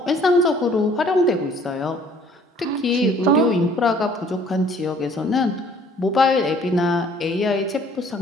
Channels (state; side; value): normal; both; correlation 0.56